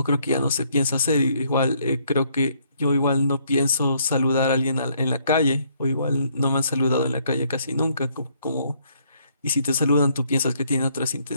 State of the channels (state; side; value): inverted; both; correlation -0.69